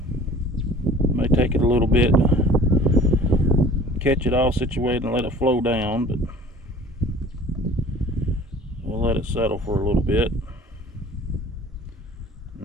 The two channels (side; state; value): both; normal; correlation 0.47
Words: May take it a little bit to catch it all situated and let it flow down, but we'll let it settle for a little bit